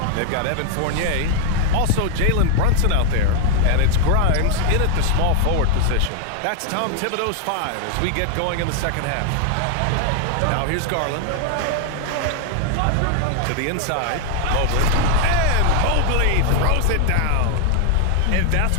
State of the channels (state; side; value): different; both; correlation 0.00